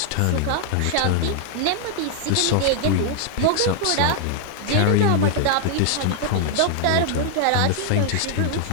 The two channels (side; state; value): both; different; correlation 0.00